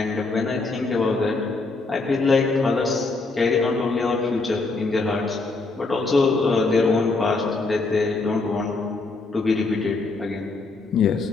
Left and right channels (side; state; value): right; quieter; 3.6 dB